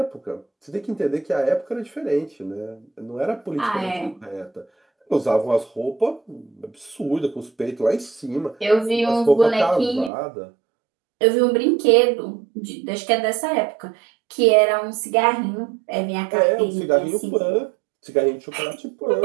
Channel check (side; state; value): left; drops out; at 10.1 s